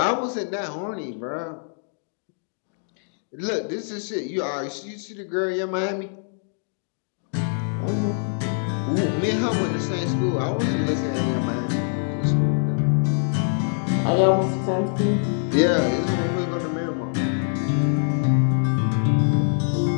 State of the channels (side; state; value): right; silent; digital silence